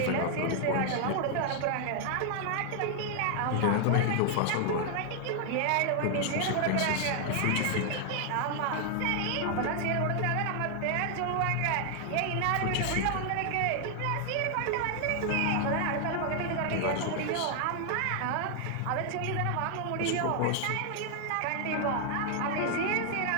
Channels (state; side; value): different; both; correlation 0.00